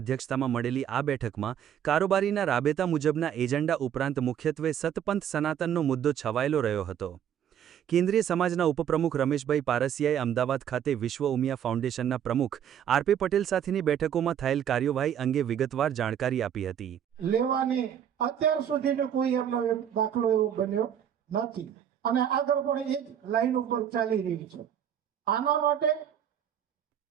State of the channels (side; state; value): left; quieter; 9.3 dB